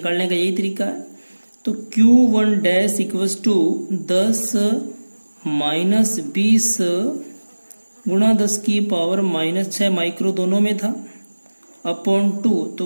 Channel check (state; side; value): inverted; both; correlation -1.00